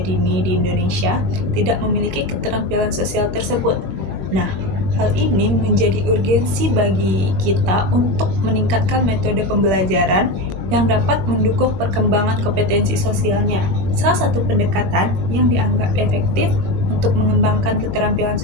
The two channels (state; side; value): late; left; 21 ms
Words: di Indonesia tidak memiliki keterampilan sosial tersebut. Nah, hal ini menjadi urgensi bagi kita untuk meningkatkan metode pembelajaran yang dapat mendukung perkembangan kompetensi sosialnya. Salah satu pendekatan yang dianggap efektif untuk mengembangkan keterampilan